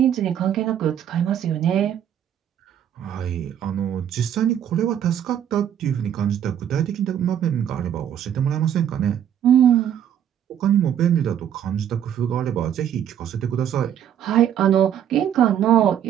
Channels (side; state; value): left; quieter; 9.8 dB